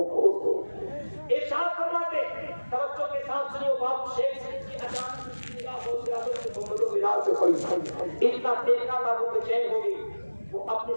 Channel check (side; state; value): both; inverted; correlation -1.00